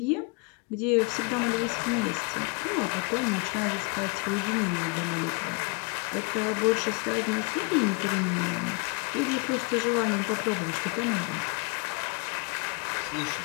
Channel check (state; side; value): quieter; right; 30.9 dB